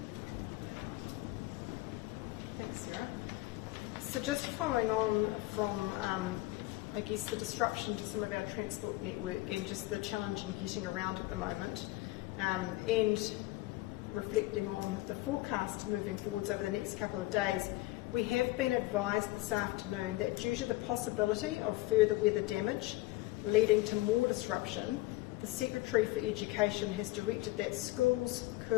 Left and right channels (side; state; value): right; quieter; 18.9 dB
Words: Thanks, Sarah. So just following on from, I guess, the disruption to some of our transport network and just the challenge in getting around at the moment, and reflecting on the forecast moving forwards over the next couple of days, we have been advised this afternoon that due to the possibility of further weather damage leading to more disruption, the Secretary for Education has directed that schools,